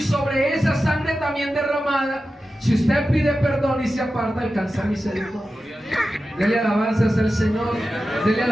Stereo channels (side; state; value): both; normal; correlation 0.93